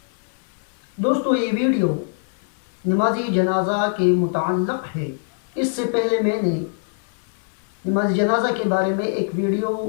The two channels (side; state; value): right; silent; 56 dB below the other